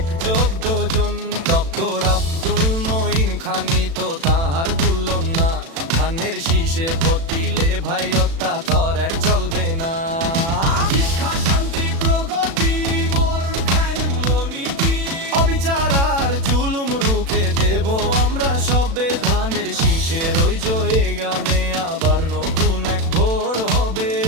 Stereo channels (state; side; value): late; left; 36 ms